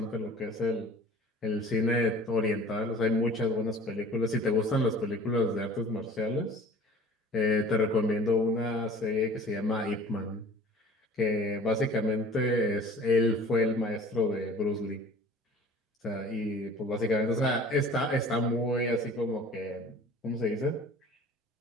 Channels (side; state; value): both; normal; correlation 0.45